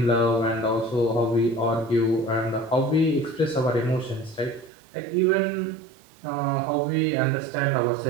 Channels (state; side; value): drops out; left; at 4.7 s